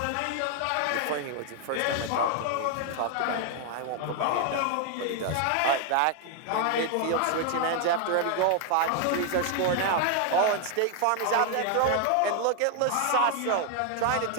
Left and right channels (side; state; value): both; different; correlation 0.00